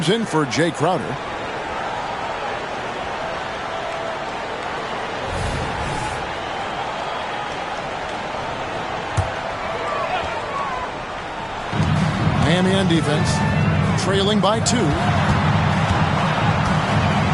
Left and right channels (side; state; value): both; identical; correlation 1.00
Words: in for Jay Crowder. Miami on defense, trailing by 2.